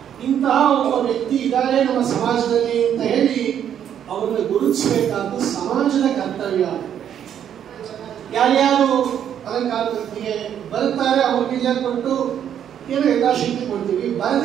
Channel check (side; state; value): left; quieter; 9.4 dB